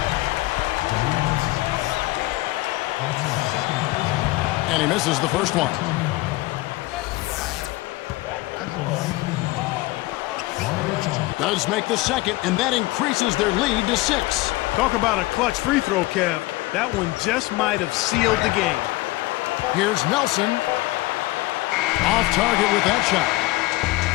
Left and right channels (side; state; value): right; quieter; 20.0 dB